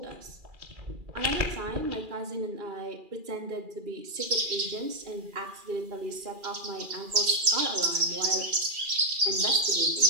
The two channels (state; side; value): late; left; 2.4 ms